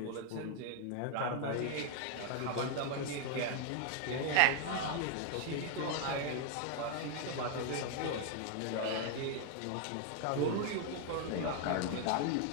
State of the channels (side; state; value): both; different; correlation 0.00